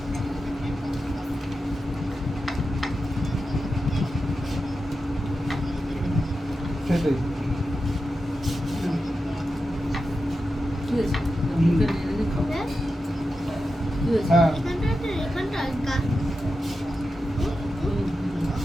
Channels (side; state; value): both; normal; correlation 0.90